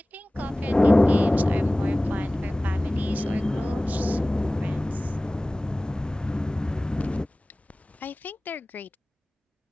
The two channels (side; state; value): both; normal; correlation 0.98